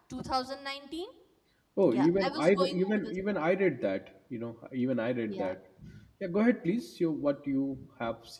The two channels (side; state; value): both; identical; correlation 1.00